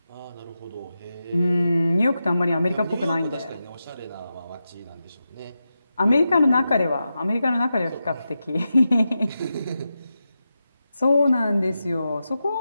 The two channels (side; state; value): both; inverted; correlation -0.90